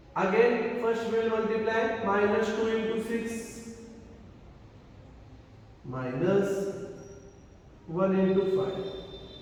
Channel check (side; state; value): both; identical; correlation 1.00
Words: Again, first we will multiply minus 2 into 6 minus 1 into 5.